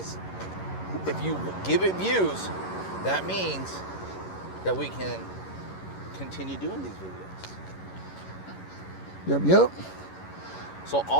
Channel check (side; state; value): right; late; 11 ms